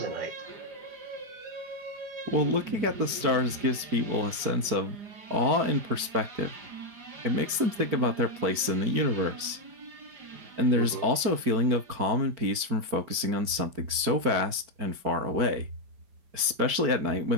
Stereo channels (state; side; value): late; left; 4.5 ms